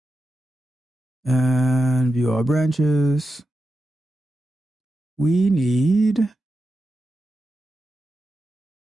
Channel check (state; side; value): normal; both; correlation 0.90